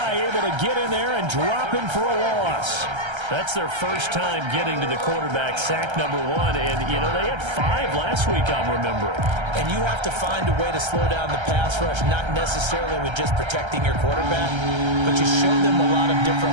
able to get in there and drop him for a loss. That's their first time getting to the quarterback, sack number 1. And, you know, they had 5 last week, I'm remembering. And you have to find a way to slow down the pass rush, not necessarily with just protecting your quarterback, but you show them a lot of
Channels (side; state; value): left; late; 1.3 ms